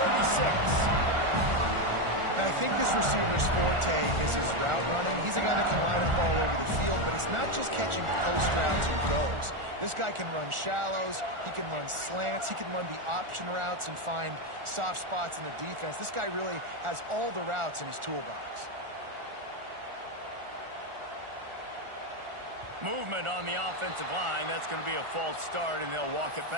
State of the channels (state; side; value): late; left; 1.4 ms